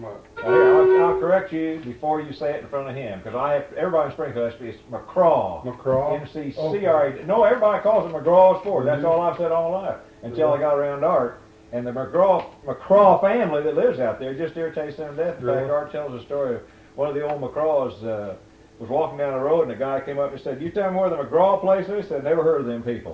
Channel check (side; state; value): both; identical; correlation 1.00